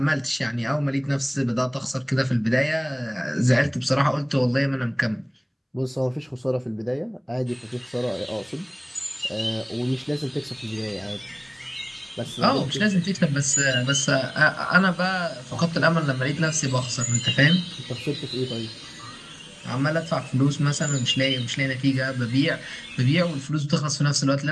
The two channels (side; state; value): both; identical; correlation 1.00